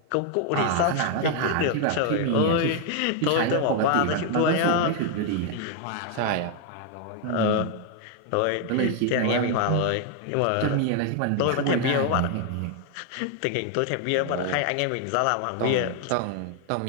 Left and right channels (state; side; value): different; both; correlation 0.00